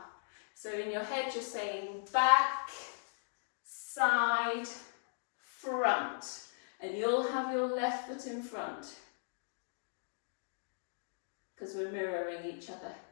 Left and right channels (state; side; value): silent; right; digital silence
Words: So in your head you're saying back, side, front. And you'll have your left foot in front, because we're mirroring each other.